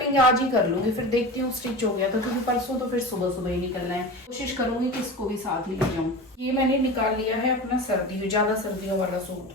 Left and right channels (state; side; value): normal; both; correlation 0.31